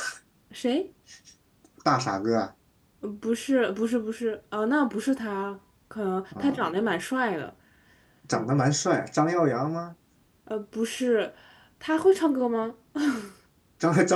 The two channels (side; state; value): both; identical; correlation 1.00